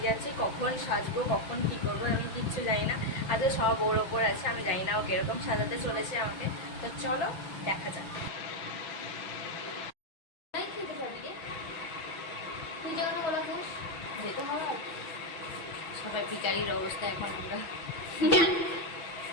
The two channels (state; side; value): late; right; 6.0 ms